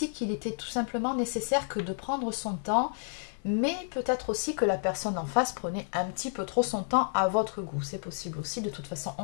qu'il était tout simplement nécessaire que de prendre son temps, mais peut-être aussi que la personne en face prenait un petit peu trop son temps à votre goût. C'est possible aussi, de toute façon,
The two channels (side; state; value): right; silent; digital silence